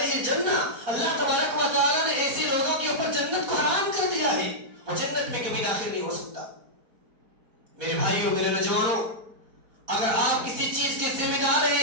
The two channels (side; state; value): left; late; 4.2 ms